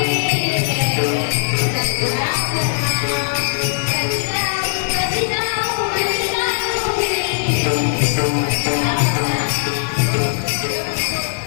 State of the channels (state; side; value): silent; right; digital silence